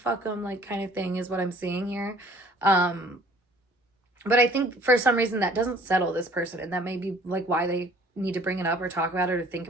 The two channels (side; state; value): both; normal; correlation 0.53